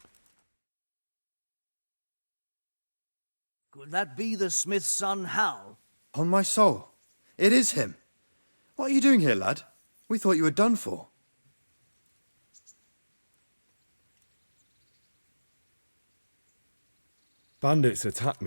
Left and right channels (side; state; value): both; inverted; correlation -1.00